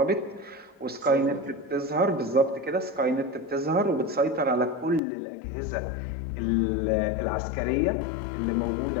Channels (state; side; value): drops out; right; at 5.0 s